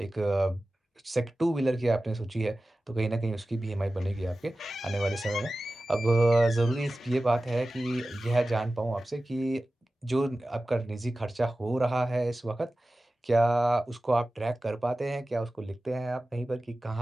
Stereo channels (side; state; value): both; normal; correlation 0.95